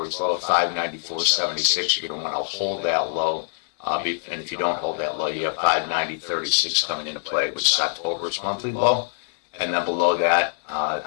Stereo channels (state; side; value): silent; right; digital silence